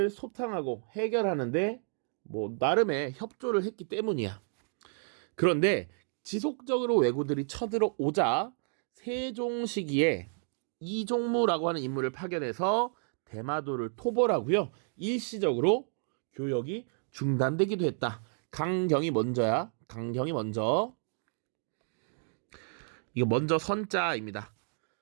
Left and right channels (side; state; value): left; silent; 57 dB below the other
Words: 소탕하고 해결하는데 나름의 협조를 했기 때문이야. 그런데 지속적으로 왜구들이 쳐들어오자 세종 시기에 이종무라고 하는 인물을 파견해서 대마도를 토벌하고요. 일시적으로 교역이 중단되기도 했다. 강경이 먼저야. 강경이 먼저. 이거 먼저 선자입니다.